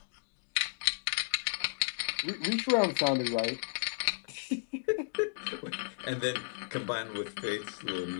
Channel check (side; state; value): right; silent; digital silence